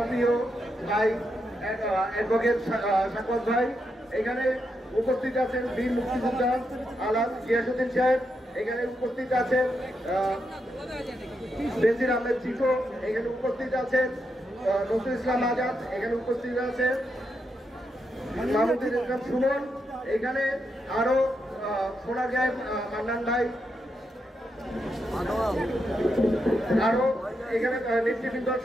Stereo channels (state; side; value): normal; both; correlation 0.83